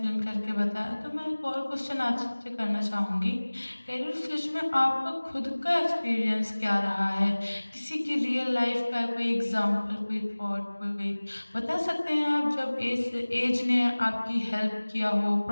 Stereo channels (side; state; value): both; inverted; correlation -1.00